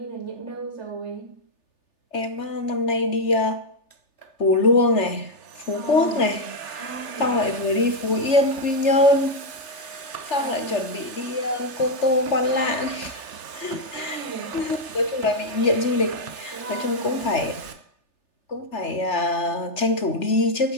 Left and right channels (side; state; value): right; late; 3.3 ms